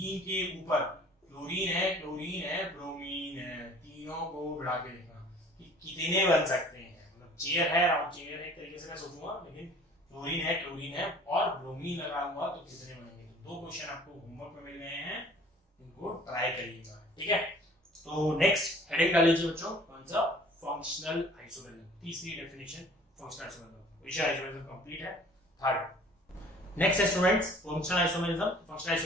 के ऊपर क्लोरीन है, ब्रोमीन है, तीनों को बढ़ा के देखना कि कितने बन सकते हैं, मतलब चेयर है, राउंड चेयर है, एक तरीके से मैं सोचूंगा, लेकिन क्लोरीन है और ब्रोमीन लगाऊंगा तो कितने बनेंगे। तो दो क्वेश्चन आपको होमवर्क में मिल गए हैं, इनको ट्राई करिएगा, ठीक है। तो नेक्स्ट हेडिंग डाल लीजिए बच्चों, कौन सा, फंक्शनल आइसोमेरिज्म, तीसरी डेफिनेशन फंक्शनल आइसोमेरिज्म, विषय आइसोमेरिज्म कंप्लीट है। थर्ड नेक्स्ट है students functional isomerism. Functional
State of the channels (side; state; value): both; normal; correlation 0.50